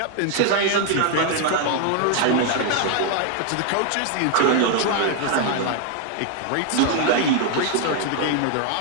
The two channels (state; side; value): different; both; correlation 0.00